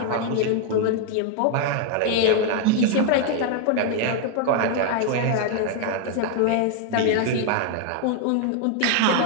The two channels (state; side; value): different; both; correlation 0.00